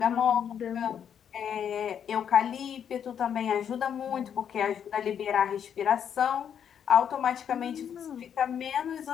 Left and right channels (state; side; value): quieter; right; 8.4 dB